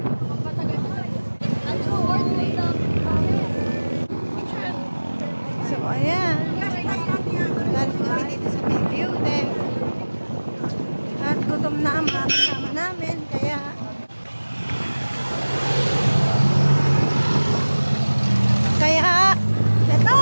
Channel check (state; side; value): inverted; both; correlation -1.00